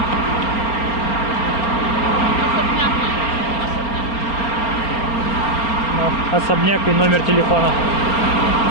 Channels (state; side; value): late; right; 4.3 ms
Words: особняк и номер телефона.